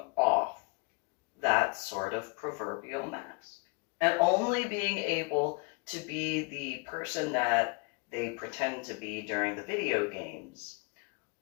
off that sort of proverbial mask and only being able to be the person that they pretend to be during the video games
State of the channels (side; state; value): right; quieter; 32.2 dB